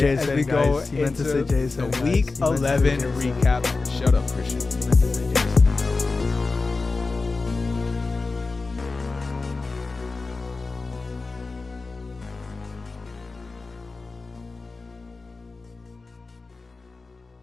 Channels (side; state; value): right; quieter; 3.8 dB